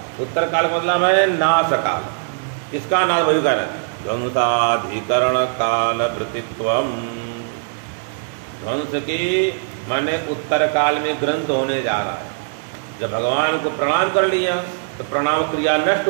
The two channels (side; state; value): left; silent; digital silence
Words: उत्तर काल का मतलब है नाश काल। किसका नाश? वही कह रहा है ध्वंसाधिकरण काल वृत्तित्वम। ध्वंस के माने उत्तर काल में ग्रंथ होने जा रहा है। जब भगवान को प्रणाम कर लिया तो प्रणाम क्रिया नष्ट